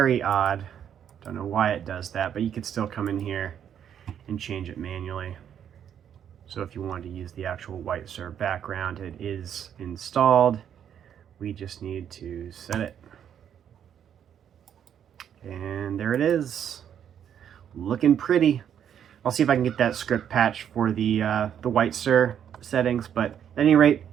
odd. Don't know why it does that, but you could still come in here and change it manually. So if you wanted to use the actual white serve background, it is installed. We just need to set it. And there it is. Looking pretty. I'll see if I can get that script patch for the white sir settings, but at any rate,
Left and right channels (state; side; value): quieter; left; 9.1 dB